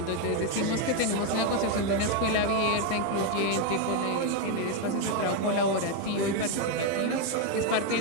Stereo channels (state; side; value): different; both; correlation 0.02